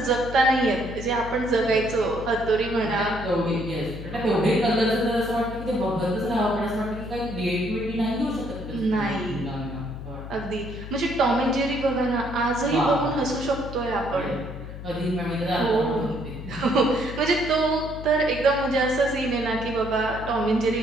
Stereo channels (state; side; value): noise; left; hum, 10 dB below the sound